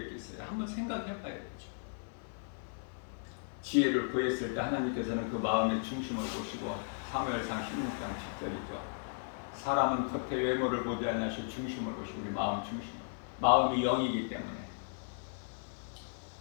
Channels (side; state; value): right; silent; digital silence